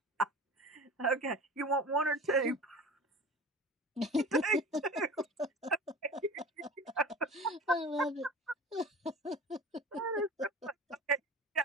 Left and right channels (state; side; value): normal; both; correlation 0.37